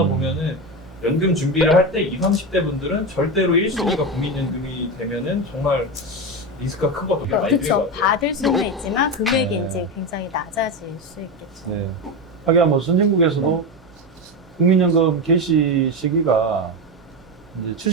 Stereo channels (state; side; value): normal; both; correlation 0.16